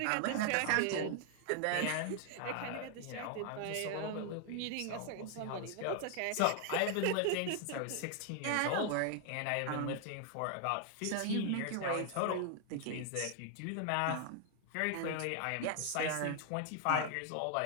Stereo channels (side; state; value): both; different; correlation 0.00